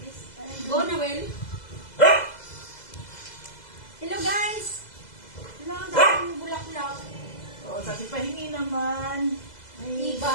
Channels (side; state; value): right; late; 2.0 ms